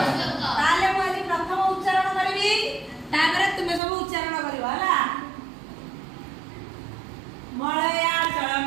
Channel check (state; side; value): drops out; left; at 3.8 s